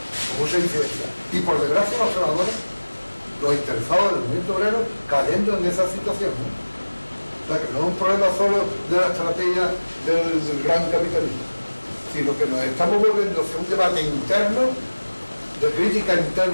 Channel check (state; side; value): inverted; both; correlation -1.00